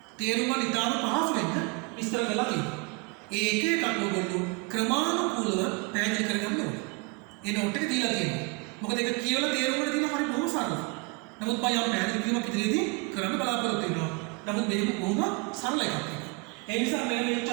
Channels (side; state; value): left; quieter; 29.6 dB